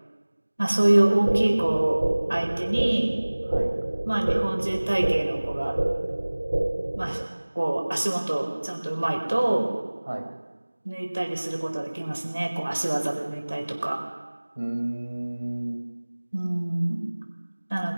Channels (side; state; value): both; inverted; correlation -1.00